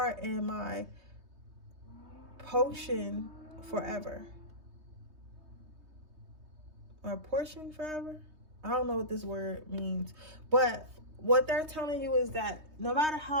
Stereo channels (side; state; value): left; late; 3.2 ms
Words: and my potion forever. Or portion forever? I don't know what this word means, but what they're telling you is that no matter